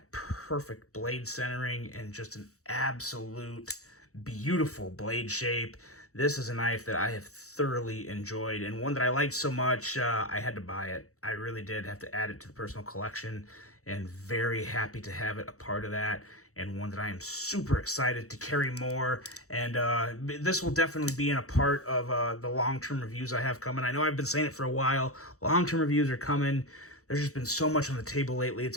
perfect blade centering and just an absolute beautiful blade shape. This is a knife that I have thoroughly enjoyed, and one that I liked so much, I had to buy it. I really did have to add it to the personal collection, and very happy to have it a part of that, and one that I am super excited to carry more. And this will definitely be in a part of the long-term reviews I have coming. I know I've been saying it for a while. Long-term reviews are coming. There's just been so much on the table lately. It's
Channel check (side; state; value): right; late; 0.65 ms